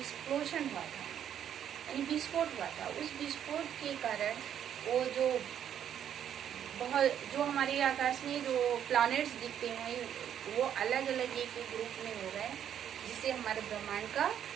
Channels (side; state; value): left; quieter; 9.6 dB